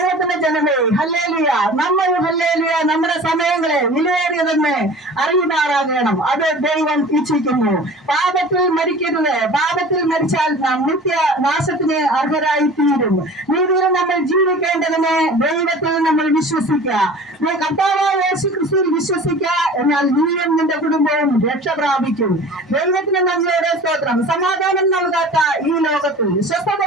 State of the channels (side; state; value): both; normal; correlation 0.41